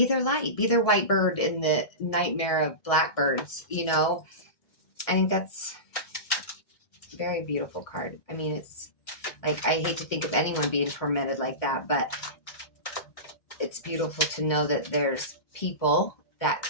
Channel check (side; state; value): right; late; 1.6 ms